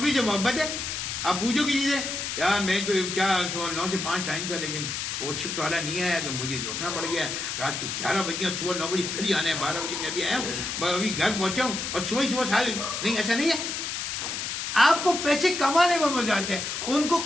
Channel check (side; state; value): left; noise; hiss, 4 dB below the sound